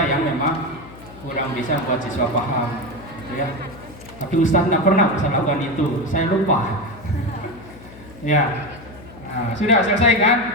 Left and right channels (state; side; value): noise; left; hum, 18 dB below the sound